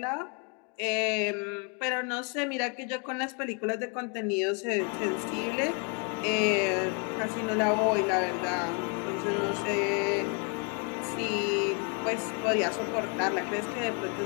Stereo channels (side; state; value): right; quieter; 36.7 dB